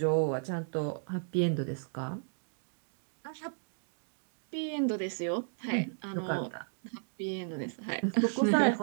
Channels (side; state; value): left; silent; digital silence